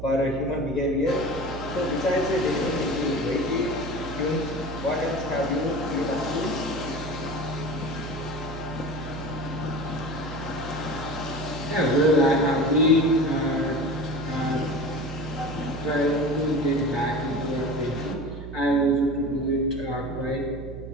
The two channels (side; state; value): right; noise; hum, 10 dB below the sound